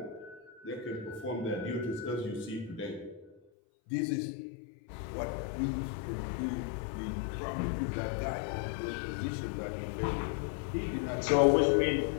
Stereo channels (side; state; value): right; drops out; at 3.4 s